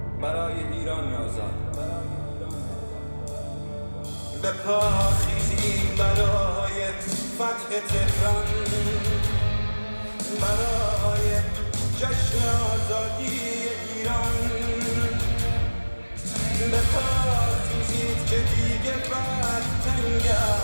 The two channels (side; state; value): both; inverted; correlation -1.00